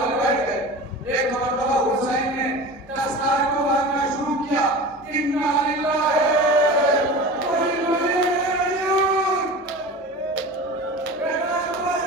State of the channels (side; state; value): both; normal; correlation 0.34